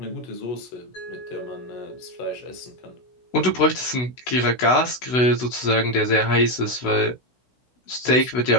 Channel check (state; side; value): late; right; 16 ms